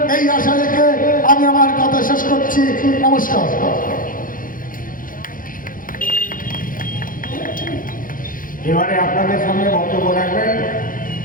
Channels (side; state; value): right; late; 0.40 ms